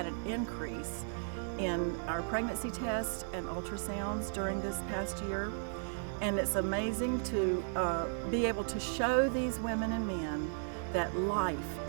an increase in our pregnancy tests and ultrasounds during this past year. And it's amazing to be able to show these women and men that life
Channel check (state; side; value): silent; left; digital silence